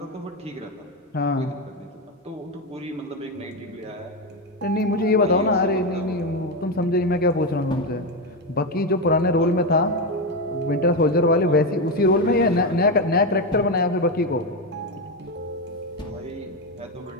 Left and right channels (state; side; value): normal; both; correlation 0.11